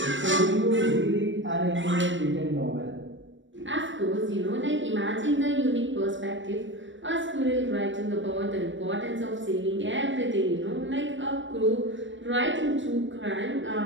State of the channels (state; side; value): late; left; 0.55 ms